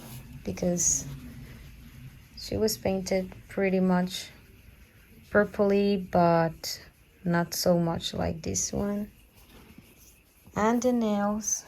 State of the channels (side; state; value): both; identical; correlation 1.00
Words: because she was painted pretty much purpley, but not so much like this one. And the nails,